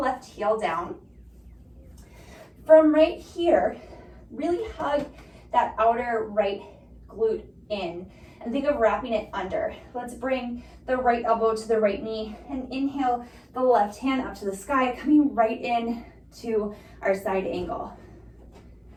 heel down. From right here, really hug that outer right glute in and think of wrapping it under. Let's bring the right elbow to the right knee and inhale the left hand up to the sky, coming right in to our side angle.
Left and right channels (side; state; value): both; identical; correlation 1.00